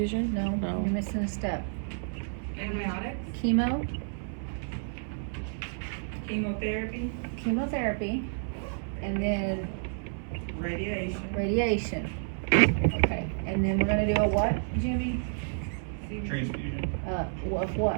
no, No. you're missing a step. Antibiotics. Chemo, Chemotherapy, chemotherapy, and then radiation. radiation. Okay, and then we're gonna do a what, Jimmy? Transfusion? Of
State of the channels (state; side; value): silent; left; 58 dB below the other